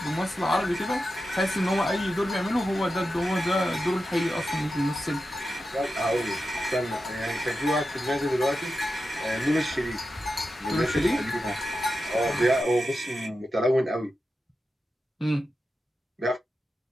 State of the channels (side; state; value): both; normal; correlation 0.90